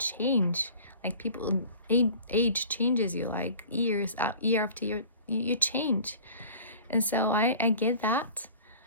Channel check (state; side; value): inverted; both; correlation -0.44